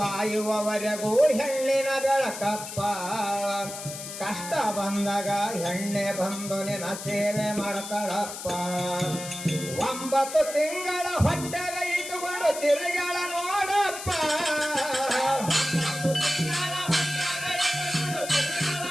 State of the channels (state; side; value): noise; left; hiss, 9 dB below the sound